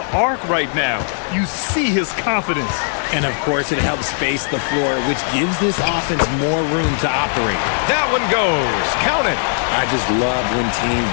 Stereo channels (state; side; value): silent; right; digital silence